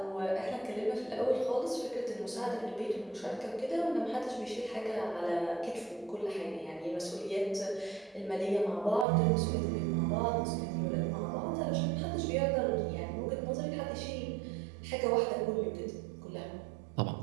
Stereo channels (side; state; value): left; drops out; at 9.1 s